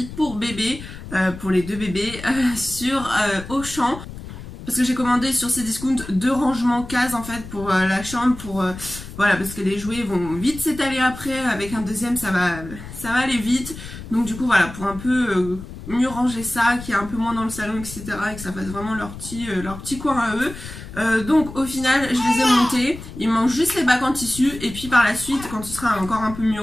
pour bébé, pour les deux bébés, sur Auchan. Parce que j'ai commandé sur Cdiscount 2 rangements cases en fait pour la chambre, pour voilà, parce que les jouets vont vite s'étaler après, avec un deuxième ça va aller vite. Donc du coup voilà, pour un peu mieux ranger ça, qu'il y ait un peu moins dans le salon, etc. et que ça fasse vraiment leur petit coin à eux. Donc au final je les ai montés, il me manque juste les bacs en tissu et puis par la suite quand ce sera encore un peu mieux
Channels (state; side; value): noise; left; rumble, 13 dB below the sound